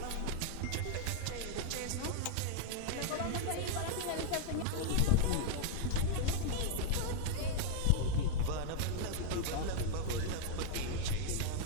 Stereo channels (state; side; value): different; both; correlation 0.00